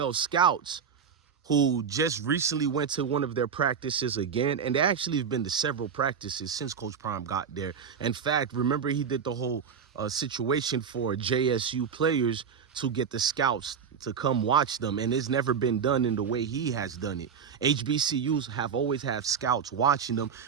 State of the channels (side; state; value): left; quieter; 6.9 dB